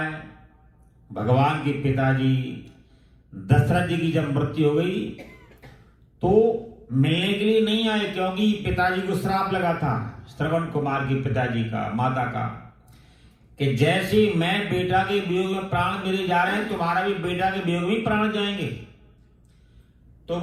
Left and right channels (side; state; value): both; identical; correlation 1.00